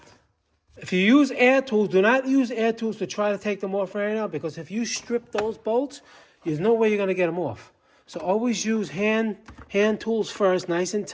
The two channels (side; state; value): both; identical; correlation 1.00